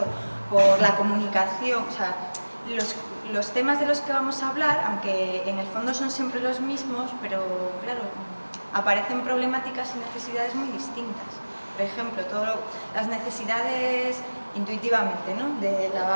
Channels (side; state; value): both; inverted; correlation -1.00